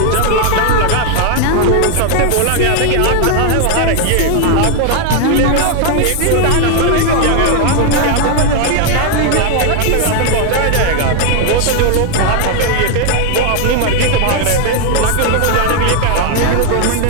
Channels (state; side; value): different; both; correlation 0.00